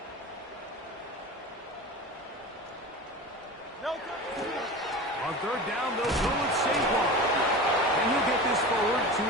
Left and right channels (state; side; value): normal; both; correlation 0.31